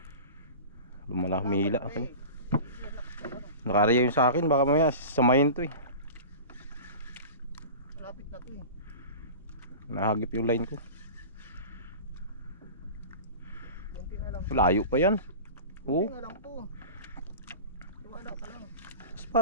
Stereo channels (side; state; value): both; inverted; correlation -0.34